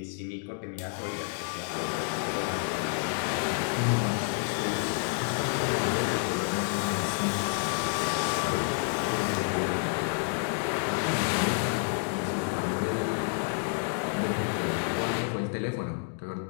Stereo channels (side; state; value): right; silent; 58 dB below the other